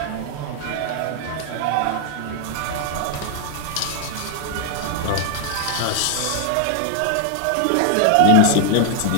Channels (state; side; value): different; both; correlation 0.00